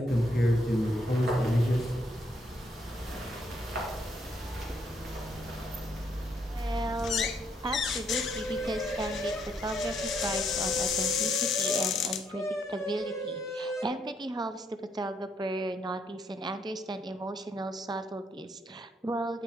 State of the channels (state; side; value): normal; both; correlation 0.74